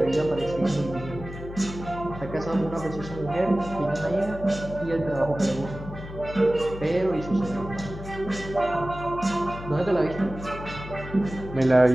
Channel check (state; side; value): noise; left; hum, 12 dB below the sound